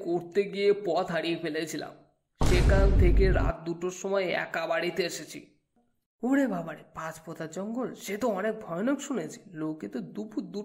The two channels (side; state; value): both; identical; correlation 1.00